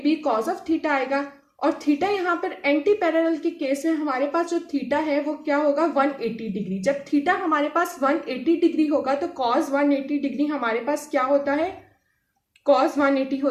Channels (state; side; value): identical; both; correlation 1.00